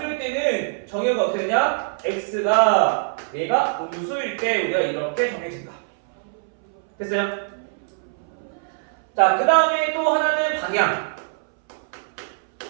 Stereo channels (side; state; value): left; silent; 61 dB below the other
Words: 때는 정의역이 어떻게 되냐? x가 얘가 음수일 때 우리가 이렇게 정해진다. 됐어요? 자, 그 다음에 또 하나는 방향.